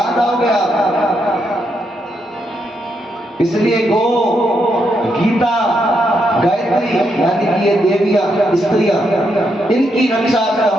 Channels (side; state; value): both; normal; correlation 0.79